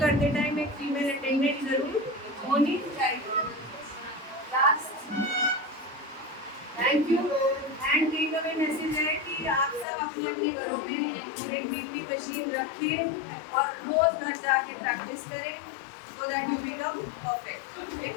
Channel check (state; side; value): drops out; right; at 9.9 s